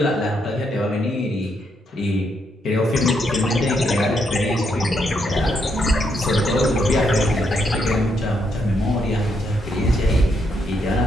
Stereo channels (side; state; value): both; normal; correlation 0.77